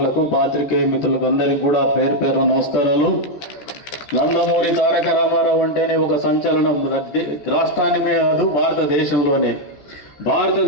పాత్రికేయ మిత్రులకు అందరికీ కూడా పేరు పేరున నమస్కారాలు. నందమూరి తారక రామారావు అంటేనే ఒక సంచలనం. రాష్ట్రాన్ని కాదు,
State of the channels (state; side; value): late; right; 14 ms